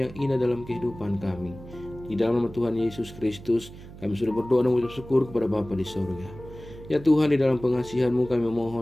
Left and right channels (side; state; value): right; noise; hum, 16 dB below the sound